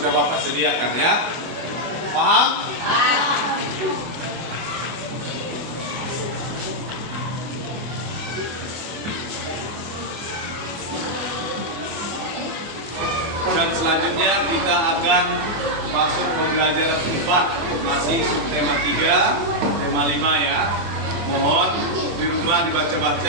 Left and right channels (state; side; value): late; left; 24 ms